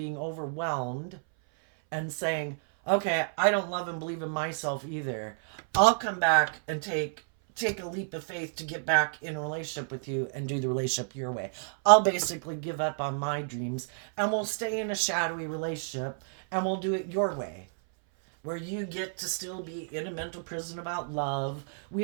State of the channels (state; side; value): silent; left; 58 dB below the other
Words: overwhelmed and saying, okay, I don't love and believe in myself either, I'll come back and take a leap of faith to get back in a relationship with you and do the relationship your way. I'll basically give up on my dreams and we'll stay in a shadowy relationship and we'll do it your way. where you get to still be in a mental prison about love.